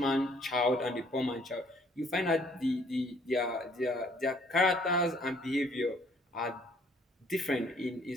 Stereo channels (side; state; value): both; normal; correlation 0.62